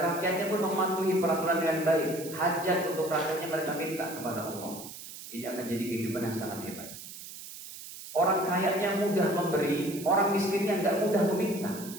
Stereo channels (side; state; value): right; noise; hiss, 13 dB below the sound